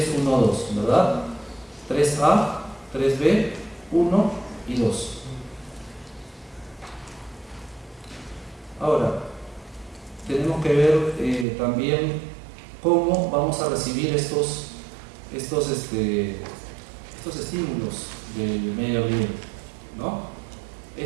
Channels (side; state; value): left; drops out; at 11.5 s